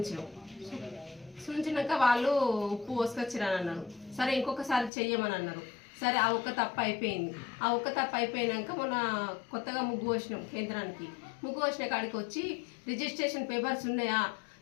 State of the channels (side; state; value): right; drops out; at 4.9 s